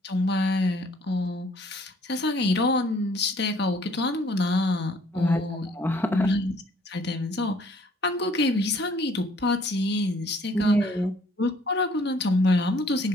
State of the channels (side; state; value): both; normal; correlation 0.60